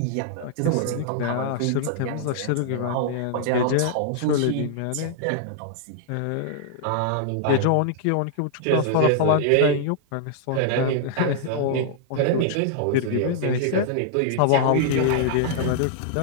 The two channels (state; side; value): different; both; correlation -0.01